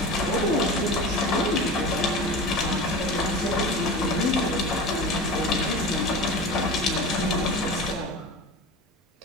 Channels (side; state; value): both; normal; correlation 0.30